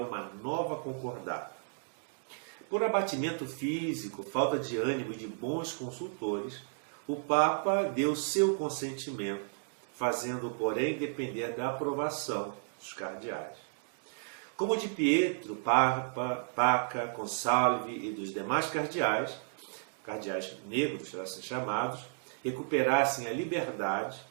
uma nova concordata. Por abatimento físico, falta de ânimo e de bons consultores, o Papa deu seu consentimento, fazendo, porém, depender da aprovação dos cardeais. Como de Pietro, Paca, Consalvi e dos demais cardeais negros, assim chamados, recuperassem a liberdade,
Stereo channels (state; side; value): silent; left; digital silence